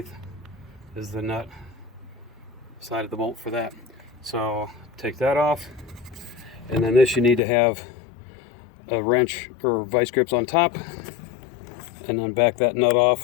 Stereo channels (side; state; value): right; drops out; at 7.4 s